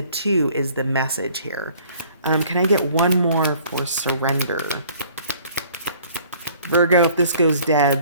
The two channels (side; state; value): both; inverted; correlation -0.55